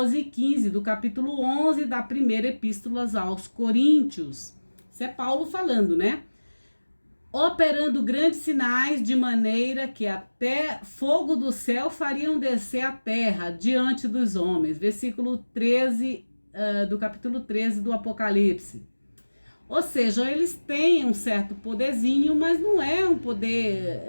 e 15 do capítulo 11 da primeira epístola aos Coríntios. Isso é Paulo falando, né? Operando grandes sinais de maneira que até fogo do céu fariam descer a terra diante dos homens. Versículo 13 do capítulo 13 do Apocalipse. Ou seja, eles têm um certo poderzinho, mas não é um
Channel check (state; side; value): inverted; both; correlation -1.00